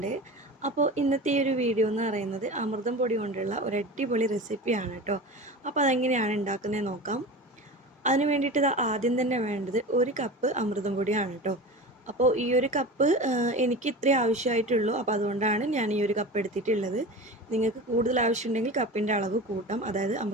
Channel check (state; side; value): normal; both; correlation 0.31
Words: അപ്പോൾ ഇന്നത്തെ ഈ ഒരു വീഡിയോ എന്ന് പറയുന്നത് അമൃതം പൊടി കൊണ്ടുള്ള ഒരു അടിപൊളി റെസിപ്പിയാണ് കേട്ടോ. അപ്പോൾ അതെങ്ങനെയാണ് ഉണ്ടാക്കുന്നത് നോക്കാം. അതിന് വേണ്ടിയിട്ട് ആദ്യം തന്നെ വേണ്ടത് 1 കപ്പ് അമൃതം പൊടിയാണ് കേട്ടോ. അപ്പോൾ ഈ ഒരു കപ്പ് എനിക്ക് ഇത്രേ ആവശ്യമായിട്ടുള്ളൂ. അപ്പോൾ അതുകൊണ്ടാണ് ഞാൻ ഈ ഒരു കപ്പ് എടുത്തിട്ടുള്ളത്. നിങ്ങൾക്ക് കൂടുതൽ ആവശ്യമുണ്ടെങ്കിൽ കപ്പിൻ്റെ അളവ് കൂട്ടാം. അതായത്